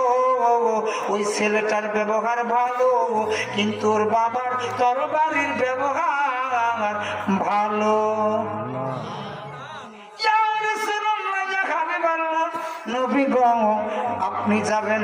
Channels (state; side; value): identical; both; correlation 1.00